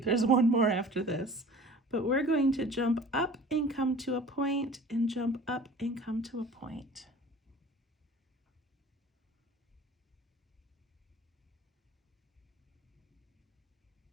There's one more after this. But we're going to jump up and come to a point and jump up and come to a point.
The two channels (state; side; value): normal; both; correlation 0.44